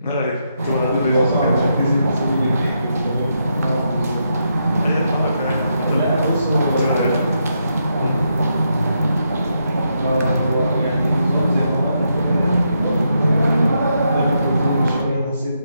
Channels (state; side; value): inverted; both; correlation -0.81